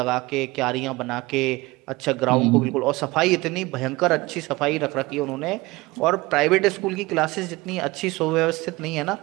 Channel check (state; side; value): quieter; left; 21.6 dB